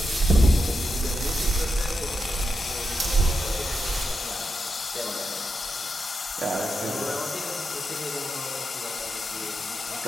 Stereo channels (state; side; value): normal; both; correlation 0.86